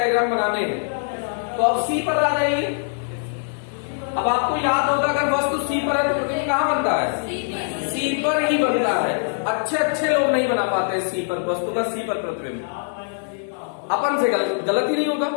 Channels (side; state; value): right; silent; digital silence